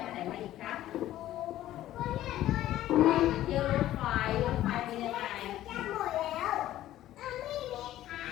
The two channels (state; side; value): quieter; right; 13.8 dB